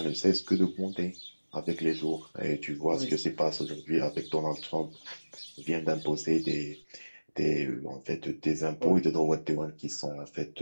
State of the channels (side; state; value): both; inverted; correlation -1.00